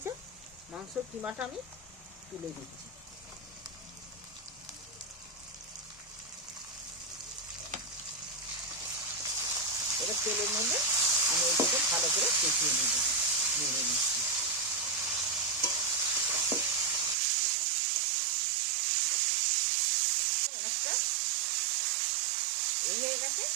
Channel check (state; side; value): drops out; left; at 17.2 s